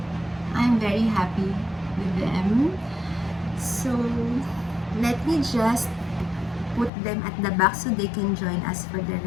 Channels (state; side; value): drops out; right; at 6.9 s